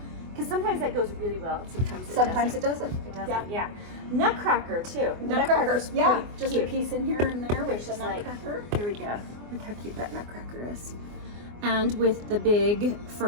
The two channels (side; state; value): left; late; 24 ms